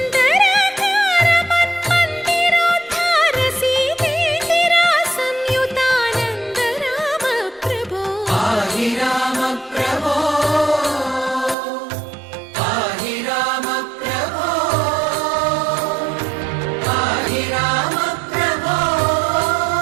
మన్మందిరోద్ధార సీతేందిరా సంయుతానంద రామ ప్రభో. పాహి రామ ప్రభో పాహి రామ ప్రభో పాహి రామ ప్రభో.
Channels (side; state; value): left; drops out; at 11.6 s